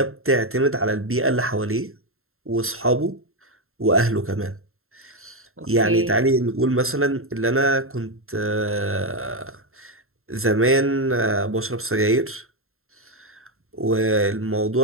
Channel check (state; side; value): late; left; 0.62 ms